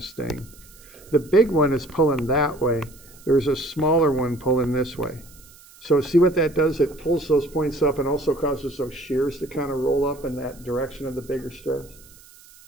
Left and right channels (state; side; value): noise; right; hiss, 24 dB below the sound